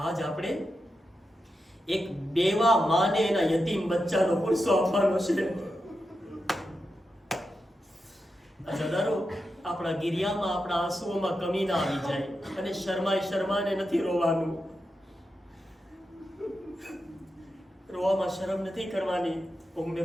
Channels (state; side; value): normal; both; correlation 0.88